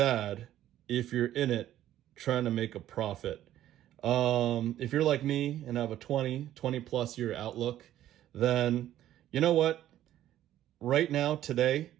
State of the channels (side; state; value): left; quieter; 12.6 dB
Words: if you're in it trying to make a profit. If you're like me and have a 20 plus year outlook, then you know what? Right now, today,